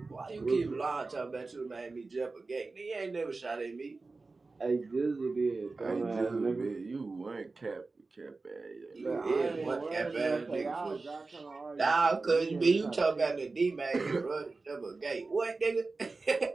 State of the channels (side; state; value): left; quieter; 3.7 dB